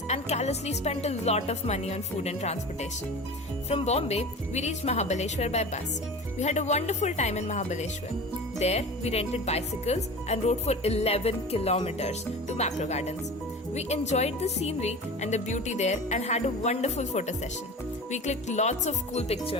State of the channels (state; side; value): normal; both; correlation 0.34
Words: and callously spent a lot of money on food and transportation. From Bombay, we reached Mahabaleshwar by bus. We had a wonderful time in Mahabaleshwar. There, we rented bicycles and rode for 11 kilometers to Mapro Gardens. We enjoyed the scenery and the beauty there and had a wonderful photo session. We clicked lots of cool